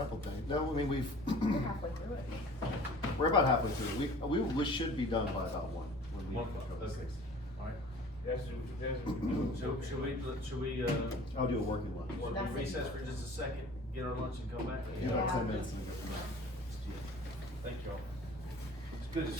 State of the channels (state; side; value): normal; both; correlation 0.46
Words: things. No, I mean, We're halfway through it. we're about halfway through. We should be done by about 1. when we 1 o'clock, go to okay. 6. Alright, That's what we do. so should we, I'll do a working lunch. want to That's it. recess for just a second, get our lunch and come back? You know, Yeah. 10 minutes and we go from there. Thank y'all. It's a good